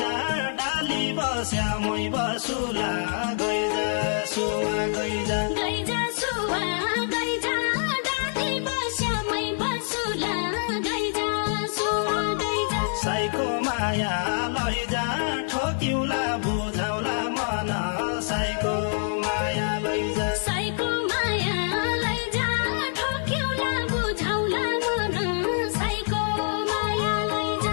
डाली बस्या मै बसुला गइजा सुवा गइजा गइजा सुवा गइजा डाली बस्या मै बसुला गइजा सुवा गइजा साइको माया लैजा ठोक्युला बुझाउला मन साइको माया लैजा साइको माया लैजा ठोक्युला बुझाउला मन साइको माया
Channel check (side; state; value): right; silent; digital silence